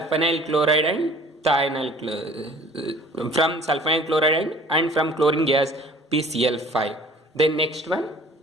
chloride and thionyl from sulfonyl chloride and from chlorine gas PCl5. Then next one,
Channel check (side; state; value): both; normal; correlation 0.50